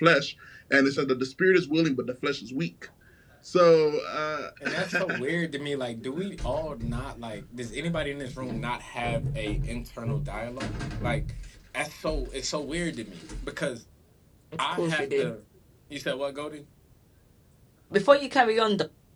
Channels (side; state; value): both; identical; correlation 1.00